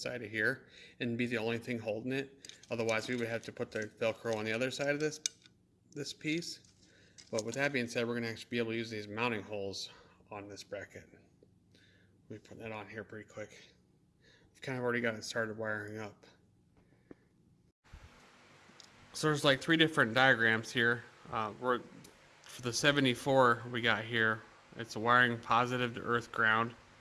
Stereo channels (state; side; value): identical; both; correlation 1.00